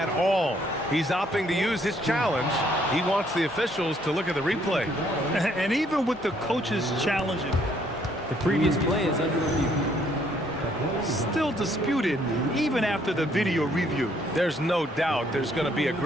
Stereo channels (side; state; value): both; normal; correlation 0.67